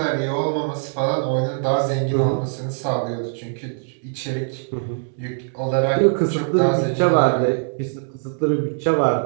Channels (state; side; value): silent; left; digital silence